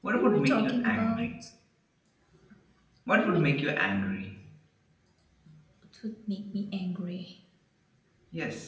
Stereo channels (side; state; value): both; identical; correlation 1.00